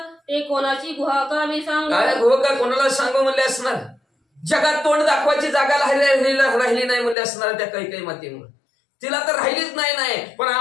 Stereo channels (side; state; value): right; drops out; at 7.2 s